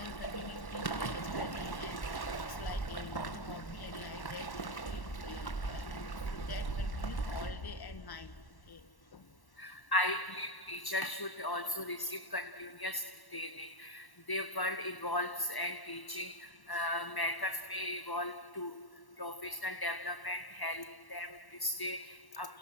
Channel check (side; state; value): right; late; 1.1 ms